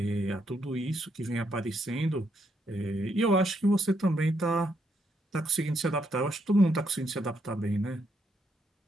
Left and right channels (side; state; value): both; normal; correlation 0.76